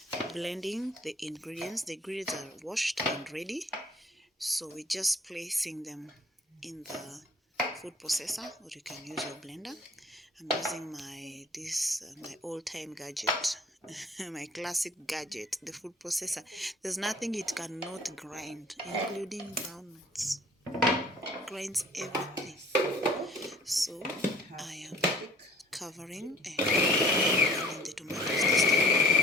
blending the ingredients. The ingredients are washed and ready. So we're just placing them in the food processor, or you can use your blender. I'm using my old-time gadget, my classic gadget, the food processor. There's nothing it cannot grind, including groundnuts. Grinds everything. So I am covering and blending the tomatoes this time.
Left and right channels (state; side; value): normal; both; correlation 0.52